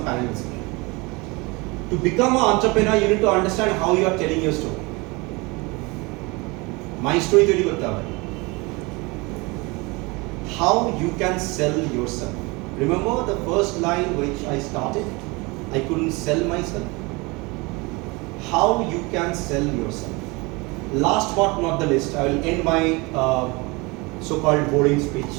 panels. To become an entrepreneur, you need to understand how you are telling your story. My story তৈরি করতে হবে. How you can sell yourself. Remember the first line which I started? I couldn't sell myself. How you can sell yourself. Last but not the least, I will end my so-called boring speech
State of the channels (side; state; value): left; quieter; 25.8 dB